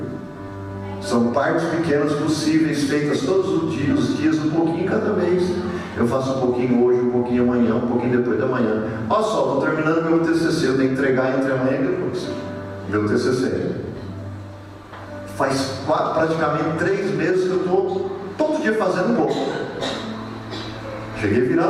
são partes pequenas possíveis, feitas todos os dias, um pouquinho cada vez. Eu faço um pouquinho hoje, um pouquinho amanhã, um pouquinho depois da manhã. Olha só, estou terminando meu TCC, eu tenho que entregar entre amanhã e depois. Meu TCC. Faz praticamente 3 meses que eu estou todo dia fazendo um pouco. Cheguei a virar à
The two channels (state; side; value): identical; both; correlation 1.00